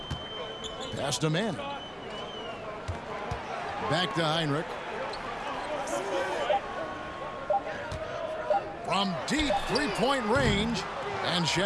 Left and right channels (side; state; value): both; identical; correlation 1.00